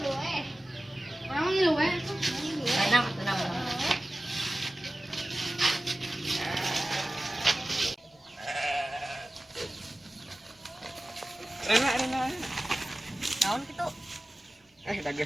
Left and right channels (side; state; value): both; normal; correlation 0.96